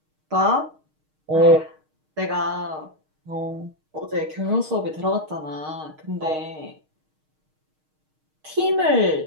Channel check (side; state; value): left; late; 6.4 ms